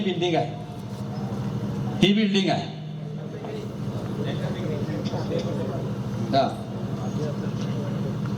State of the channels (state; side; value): identical; both; correlation 1.00